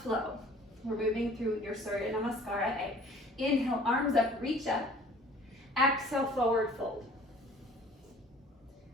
We're moving through your Surya Namaskara A. Inhale, arms up, reach up. Exhale, forward fold.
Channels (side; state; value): both; normal; correlation 0.51